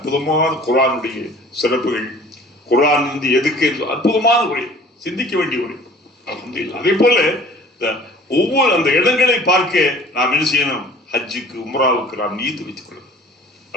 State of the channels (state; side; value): normal; both; correlation 0.49